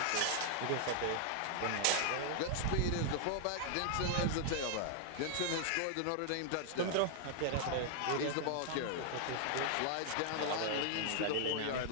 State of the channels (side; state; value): both; different; correlation 0.00